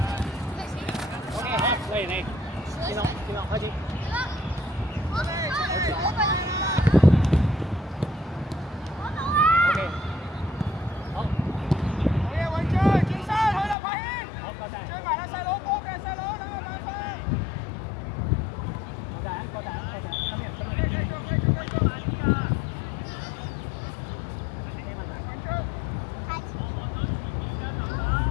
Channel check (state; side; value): drops out; right; at 13.8 s